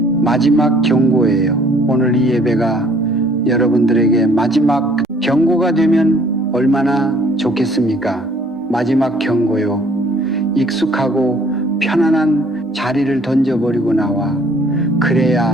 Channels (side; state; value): both; normal; correlation 0.58